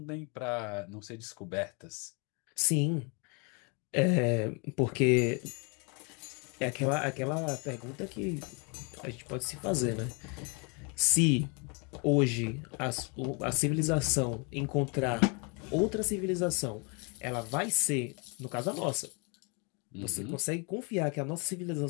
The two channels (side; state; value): right; quieter; 33.4 dB